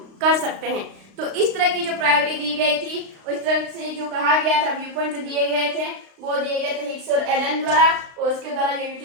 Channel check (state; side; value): late; left; 35 ms